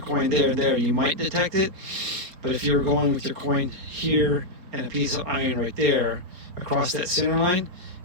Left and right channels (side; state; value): left; late; 4.3 ms